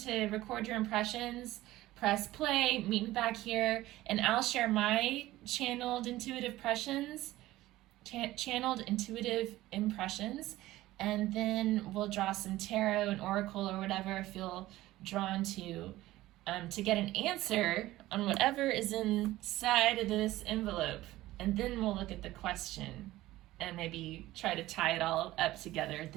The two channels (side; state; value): left; quieter; 16.5 dB